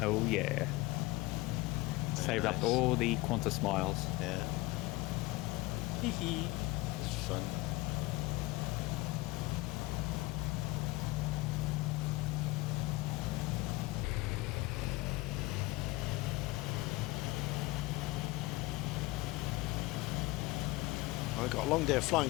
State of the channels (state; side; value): quieter; right; 20.6 dB